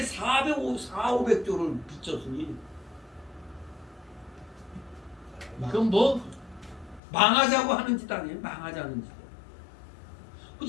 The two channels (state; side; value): drops out; right; at 7.0 s